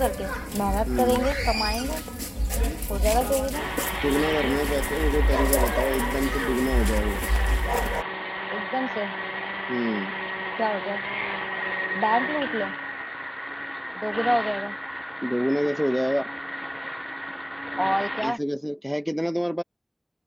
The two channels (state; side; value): identical; both; correlation 1.00